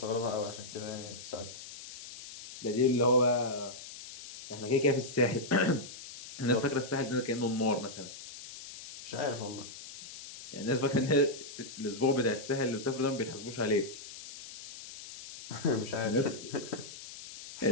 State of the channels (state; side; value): noise; left; hiss, 13 dB below the sound